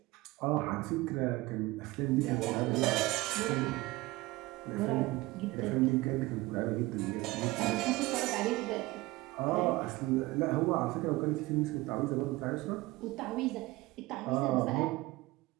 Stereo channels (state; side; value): quieter; left; 20.5 dB